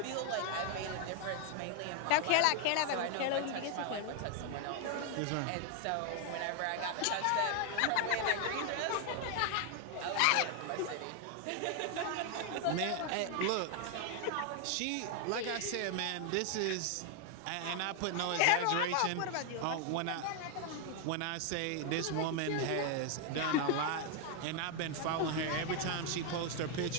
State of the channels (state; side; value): different; both; correlation 0.00